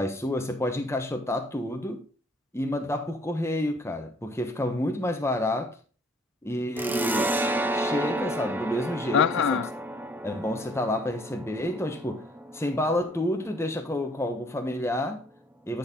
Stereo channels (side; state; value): both; normal; correlation 0.60